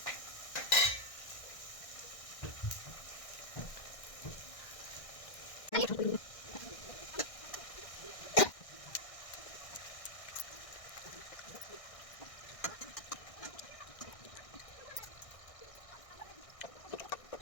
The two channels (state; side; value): late; right; 1.6 ms